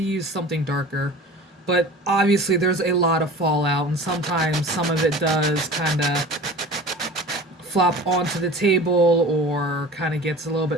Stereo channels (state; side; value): normal; both; correlation 0.39